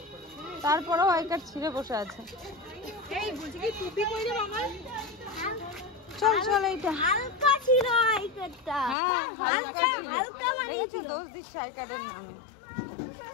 তারপরেও আই কার্ড ছিঁড়ে বসে আছে। চল চল, এইটা হালকা ছিল আইকারটা। হ্যাঁ হালকা হালকা মানে দেখেছো, দোষ দিচ্ছে আই কার্ডের নামে।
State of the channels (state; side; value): drops out; right; at 9.0 s